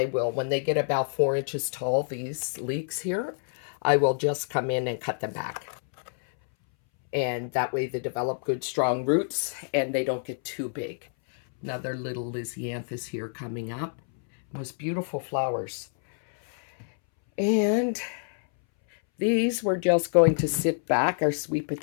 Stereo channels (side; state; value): right; silent; 60 dB below the other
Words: will, when they get about 4 inches tall, these leeks here, I will just come in and cut them back. And that way they develop good strong roots and they don't get too big. Another little Lysianthus here coming up. Most beautiful flowers. And these we're just going to sit back, our sweet